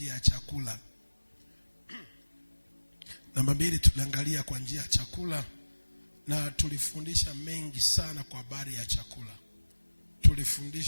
ya chakula. Namba 2, tuliangalia kwa njia ya chakula, na tulifundisha mengi sana kwa habari ya chakula.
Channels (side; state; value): both; inverted; correlation -1.00